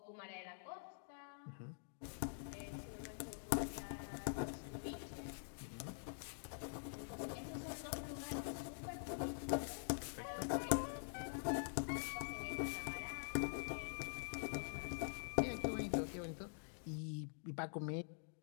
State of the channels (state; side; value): silent; right; digital silence